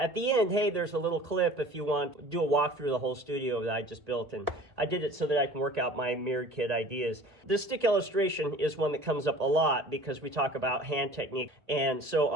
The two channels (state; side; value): late; left; 1.8 ms